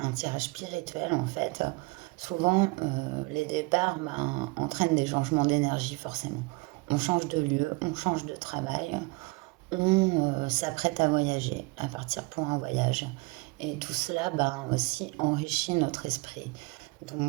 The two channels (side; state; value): left; quieter; 26.4 dB